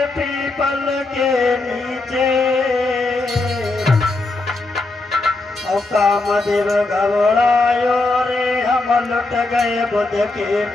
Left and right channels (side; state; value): right; quieter; 3.2 dB